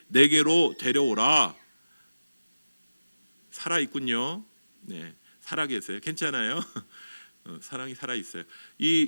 내게로 데려오라. 살아있군요. 네, 살아계세요. 괜찮아요? 사랑이 살아있어요.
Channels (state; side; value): inverted; both; correlation -0.96